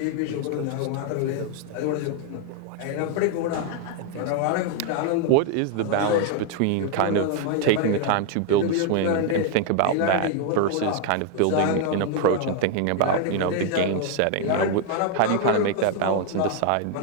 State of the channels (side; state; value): both; different; correlation 0.00